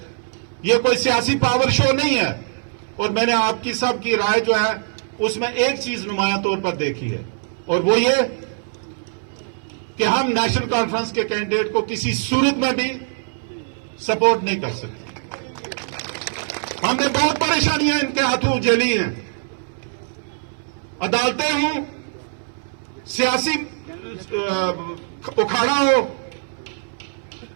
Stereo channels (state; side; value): silent; left; 63 dB below the other